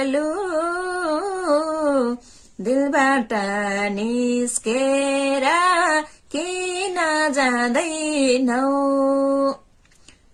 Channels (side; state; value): both; identical; correlation 1.00